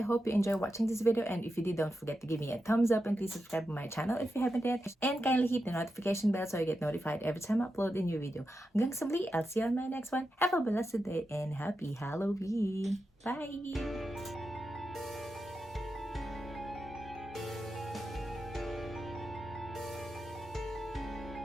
you enjoy watching this video. And if you did, don't forget to give me a thumbs up and please subscribe to my channel if you haven't yet. And kindly hit the notification bell so you get notified every time I upload a new video. Hanggang sa muli, I'll see you on my next one. Have a blessed day and happy Halloween. Bye!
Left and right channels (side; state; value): both; normal; correlation 0.89